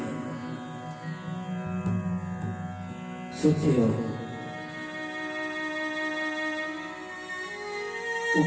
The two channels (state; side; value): identical; both; correlation 1.00